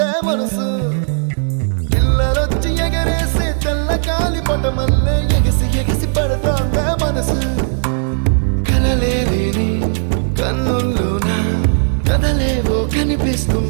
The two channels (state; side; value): silent; left; digital silence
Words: మనసు పిల్లలొచ్చి ఎగరేసే తెల్ల కాలి పటమల్లే ఎగిసి ఎగిసి పడతాందా మనసు కలలే లేని కన్నుల్లోన కదలేవో